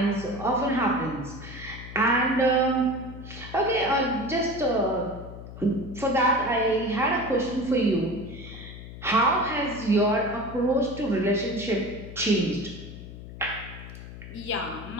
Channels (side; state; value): left; noise; hum, 13 dB below the sound